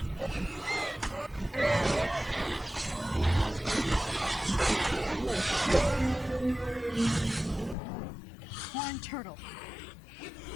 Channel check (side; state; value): right; drops out; at 7.8 s